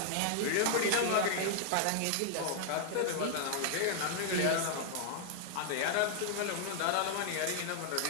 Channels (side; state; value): both; different; correlation 0.00